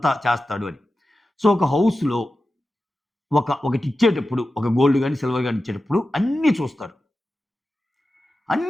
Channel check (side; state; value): both; normal; correlation 0.93